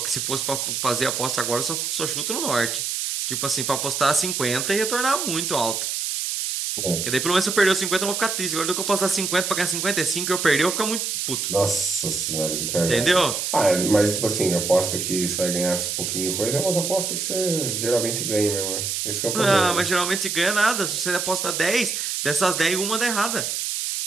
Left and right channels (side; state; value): right; noise; hiss, 2 dB below the sound